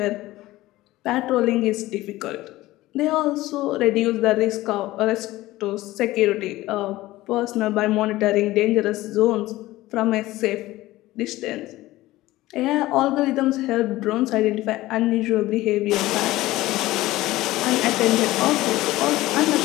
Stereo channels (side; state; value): right; quieter; 17.3 dB